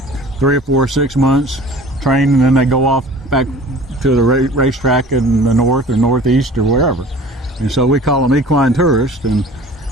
3 or 4 or 6 months, train, and then they go off back to the racetrack in the north or northeast or wherever. And so we call them equine tourists, and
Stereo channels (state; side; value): normal; both; correlation 0.46